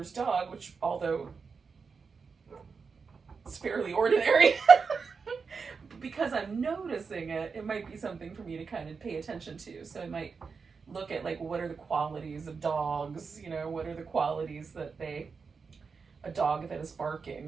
dog, which although it's fairly ordinary, because I'm noticing it, it might be something for me to kind of pay attention to. So I might look at, like, what are the qualities of dogs, what are the qualities that a dog that is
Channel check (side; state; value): left; quieter; 5.2 dB